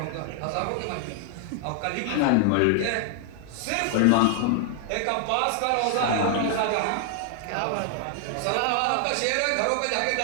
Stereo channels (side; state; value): both; different; correlation 0.00